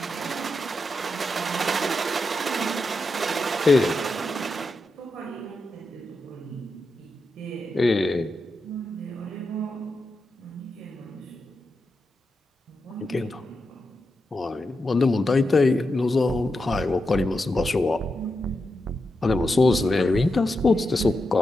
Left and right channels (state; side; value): normal; both; correlation 0.87